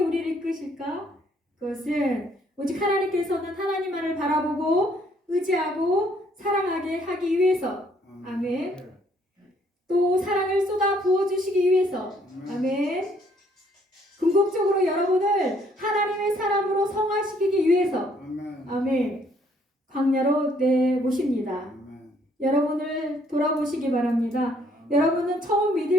우리를 이끄실까? 그것은 오직 하나님께서는 하나님만을 바라보고 의지하고 사랑하게 하기 위해서, 아멘. 또 사랑을 쏟아 부어주시기 위해서, 아멘. 궁극적으로 여러분을 하나님의 사람으로 성화시키기 위해서, 아멘. 광야로 내모십니다. 여러분을 돌아보시기 바랍니다. 여러분은 처음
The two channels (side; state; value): both; normal; correlation 0.65